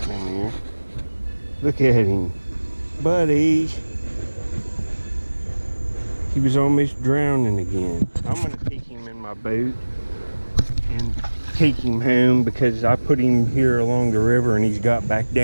in here. Look at him. Buddy. He was almost drowning again. I'm going to take him in my boat and take him home because I put him here along the river and he's got back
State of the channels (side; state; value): both; inverted; correlation -1.00